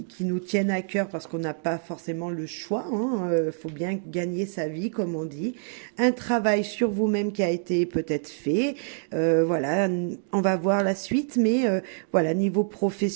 nous tiennent à cœur parce qu'on n'a pas forcément le choix. Faut bien gagner sa vie, comme on dit. Un travail sur vous-même qui a été peut-être fait. Voilà, on va voir la suite, mais voilà, niveau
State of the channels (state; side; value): silent; left; digital silence